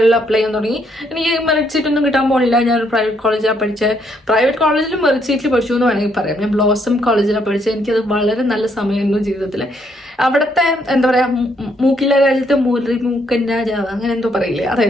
അപ്ലൈ ചെയ്യാൻ തുടങ്ങി. എനിക്ക് മെറിറ്റ് സീറ്റ് ഒന്നും കിട്ടാൻ പോണില്ല. ഞാൻ പ്രൈവറ്റ് കോളേജിലാണ് പഠിച്ചത്. പ്രൈവറ്റ് കോളേജിലും മെറിറ്റ് സീറ്റിൽ പഠിച്ചു എന്ന് വേണമെങ്കിൽ പറയാം. ഞാൻ ബ്ലോസം കോളേജിലാണ് പഠിച്ചത്. എനിക്കത് വളരെ നല്ല സമയമായിരുന്നു ജീവിതത്തിൽ. അവിടുത്തെ എന്താ പറയാ മൂക്കിലെ രാജ്യത്തെ മൂലി മൂക്കൻ രാജാവ് അങ്ങനെ എന്തോ പറയില്ലേ,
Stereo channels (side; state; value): both; normal; correlation 0.72